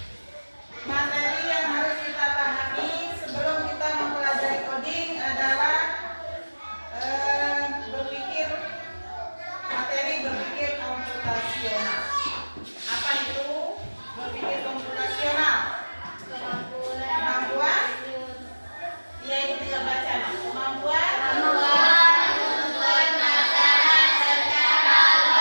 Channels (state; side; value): inverted; both; correlation -1.00